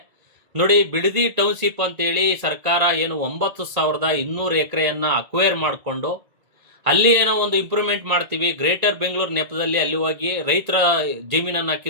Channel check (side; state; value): left; late; 1.9 ms